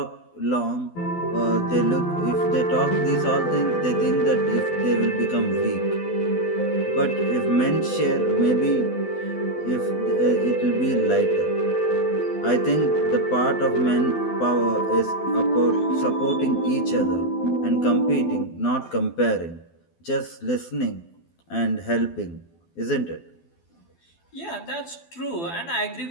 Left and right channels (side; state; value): right; late; 12 ms